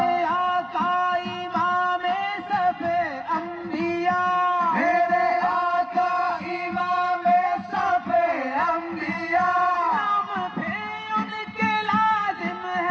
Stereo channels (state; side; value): identical; both; correlation 1.00